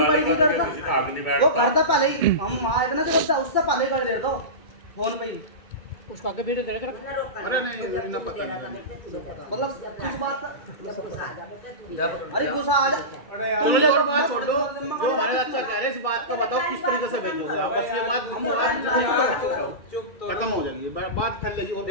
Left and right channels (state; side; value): late; right; 2.3 ms